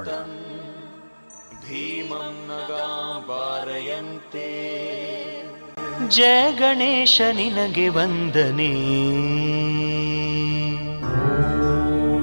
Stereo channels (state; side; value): inverted; both; correlation -1.00